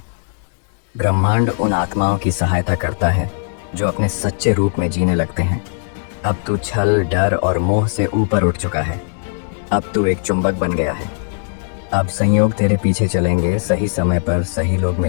ब्रह्मांड उन आत्माओं की सहायता करता है जो अपने सच्चे रूप में जीने लगते हैं। अब तू छल, डर और मोह से ऊपर उठ चुका है। अब तू एक चुंबक बन गया है। अब संयोग तेरे पीछे चलेंगे, सही समय पर सही लोग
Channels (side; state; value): right; silent; digital silence